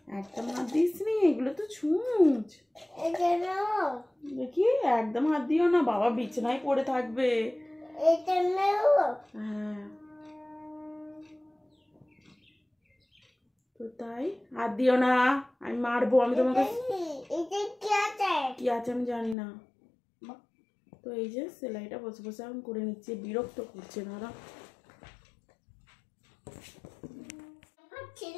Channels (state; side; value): drops out; right; at 19.4 s